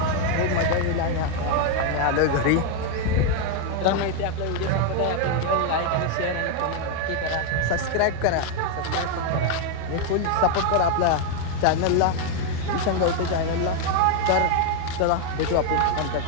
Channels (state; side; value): different; both; correlation 0.01